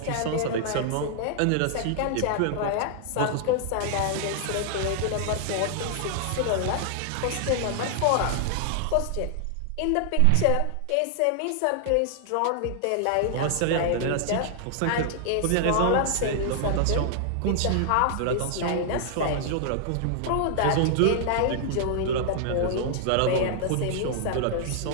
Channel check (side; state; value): both; different; correlation -0.01